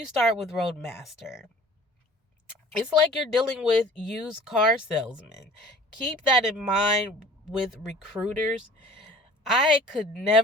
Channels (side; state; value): both; normal; correlation 0.48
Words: start with Roadmaster, it's like you're dealing with used car salesmen. Keep that in mind with recruiters. I could